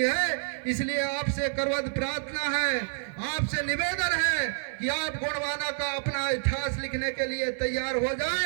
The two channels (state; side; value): silent; left; 59 dB below the other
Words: है। इसलिए आपसे करवत प्रार्थना है, आपसे निवेदन है कि आप गोंडवाना का अपना इतिहास लिखने के लिए तैयार हो